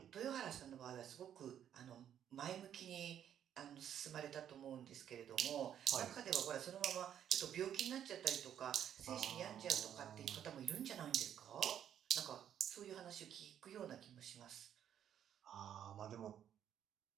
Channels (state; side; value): quieter; left; 9.8 dB